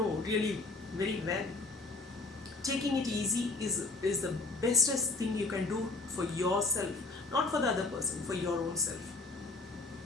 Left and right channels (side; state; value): right; quieter; 3.4 dB